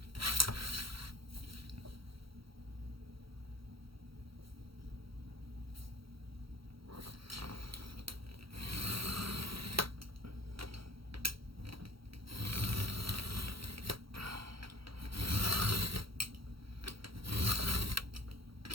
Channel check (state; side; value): late; left; 0.75 ms